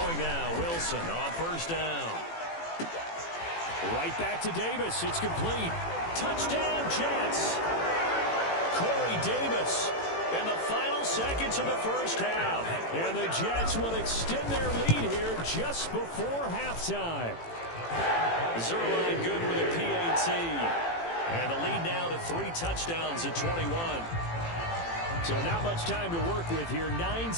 now, Wilson on first down. Right back to Davis. It's complete. Touchdown, Jets. Corey Davis in the final seconds of the first half. And the Jets will extend their lead here just before halftime. Zerline good with a PAT. And the lead now to 3 touchdowns at 21. So not much time to work with here. 9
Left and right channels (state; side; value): late; right; 18 ms